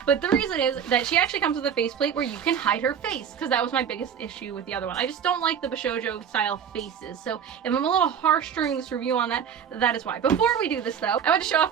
But the reason is that she actually comes with a faceplate where you can hide her face, because that was my biggest issue with the other one. I just don't like the BISHOUJO style faces. So if I'm a little harsh during this review on that, that is why. Before we do this though, I want to show off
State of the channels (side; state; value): left; quieter; 8.0 dB